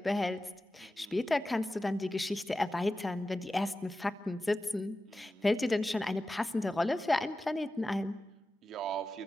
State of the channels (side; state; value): both; normal; correlation 0.93